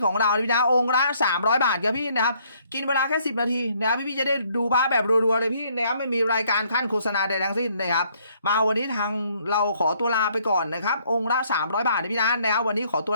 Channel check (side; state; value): both; inverted; correlation -0.66